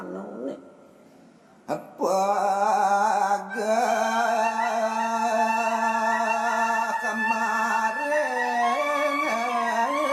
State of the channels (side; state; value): both; identical; correlation 1.00